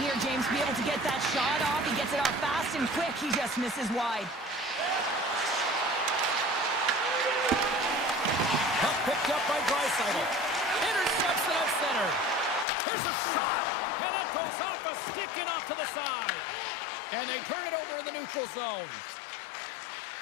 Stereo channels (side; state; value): right; drops out; at 12.7 s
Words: here, James, to be able to get that shot off. He gets it off fast and quick. He just misses wide. Puck picked up by Draisaitl. Intercepts it at center. Here's a shot. And that goes off a stick and off to the side. And they turn it over in the neutral zone.